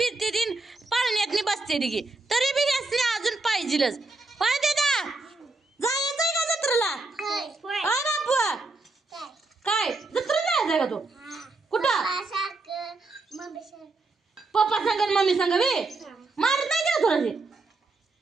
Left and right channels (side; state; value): left; quieter; 3.4 dB